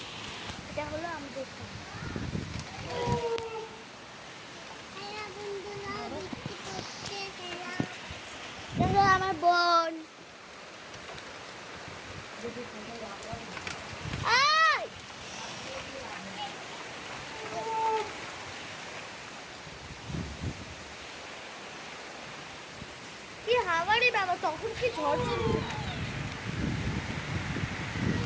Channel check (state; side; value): identical; both; correlation 1.00